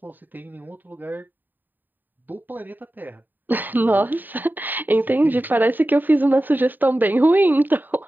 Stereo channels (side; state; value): left; late; 0.090 ms